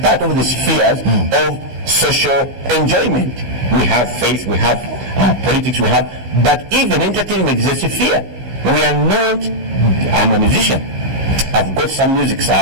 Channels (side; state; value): left; late; 15 ms